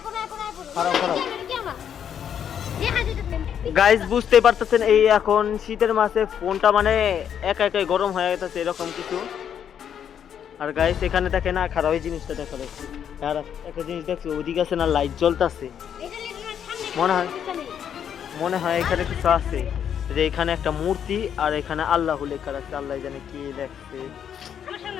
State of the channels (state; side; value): quieter; right; 8.7 dB